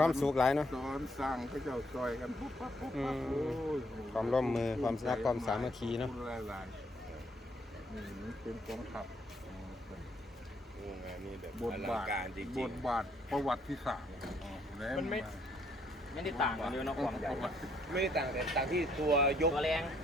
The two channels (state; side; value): normal; both; correlation 0.69